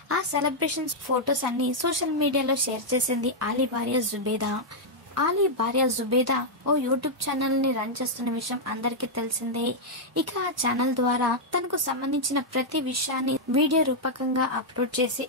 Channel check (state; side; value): normal; both; correlation -0.04